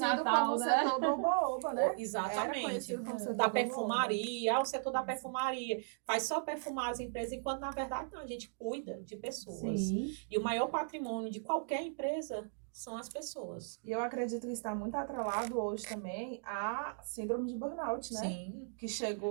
né? Setor do oba-oba, né? Exatamente. Da perfumaria, o setor da perfumaria faz só perfumar as empresas, enquanto na verdade não, a gente cuida de pessoas. Sim. E o maior patrimônio de qualquer empresa são as pessoas. E eu acredito que está muito atrelado hoje também à síndrome de burnout, né? Sim. Que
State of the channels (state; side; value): silent; left; digital silence